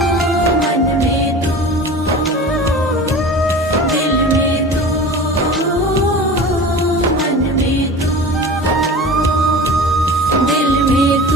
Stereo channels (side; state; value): both; normal; correlation 0.36